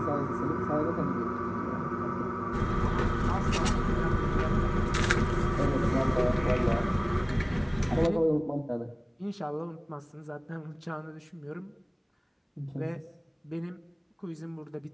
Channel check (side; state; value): both; identical; correlation 1.00